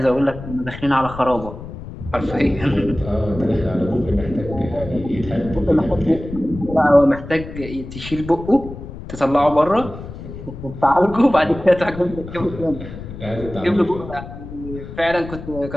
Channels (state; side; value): noise; left; rumble, 12 dB below the sound